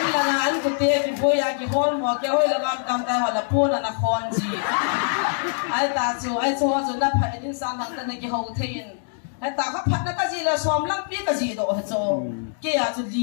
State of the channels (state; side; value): silent; right; digital silence